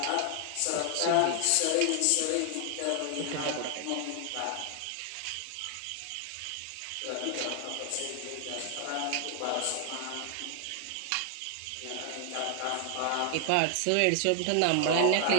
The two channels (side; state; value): both; different; correlation 0.00